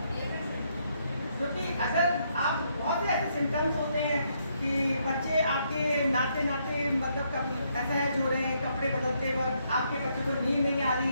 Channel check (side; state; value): both; inverted; correlation -0.74